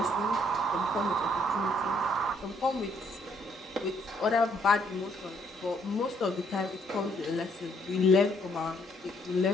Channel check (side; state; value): both; normal; correlation 0.68